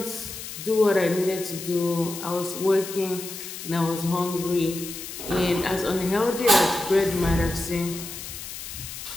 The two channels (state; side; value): noise; left; hiss, 10 dB below the sound